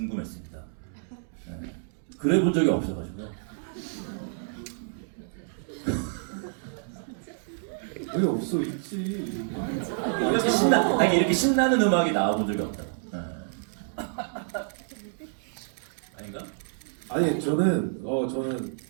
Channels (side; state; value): left; silent; digital silence